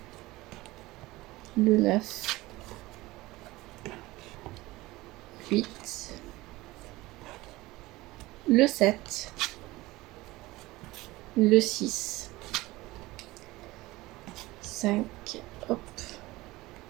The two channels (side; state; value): left; quieter; 19.5 dB